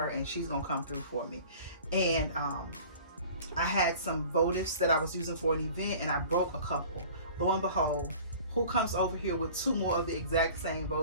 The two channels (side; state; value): both; inverted; correlation -0.44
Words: and she's gonna come through for me. And I had some votives that I was using for an event, and I broke a couple. Lo and behold, who comes over here with 2 more of the exact same